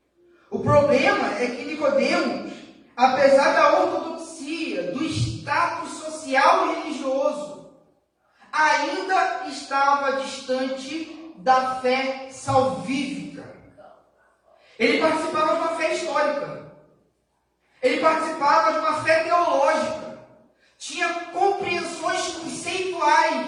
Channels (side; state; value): both; identical; correlation 1.00